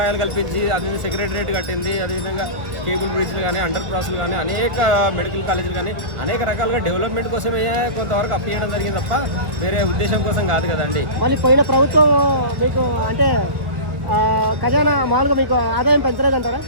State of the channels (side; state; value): left; late; 1.2 ms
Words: కల్పించి, అది సెక్రటరియట్ కట్టింది, అదేవిధంగా కేబుల్ బ్రిడ్జ్లు కానీ, అండర్ పాస్లు కానీ, అనేక మెడికల్ కాలేజీలు కానీ, అనేక రకాలుగా డెవలప్మెంట్ కోసమే కొంతవరకు అప్పు చేయడం జరిగింది తప్ప వేరే ఉద్దేశం కోసం కాదు కదండి. మళ్ళీ పోయిన ప్రభుత్వం మీకు అంటే ఖజానా మామూలుగా మీకు ఆదాయం పెంచలేదంటారా?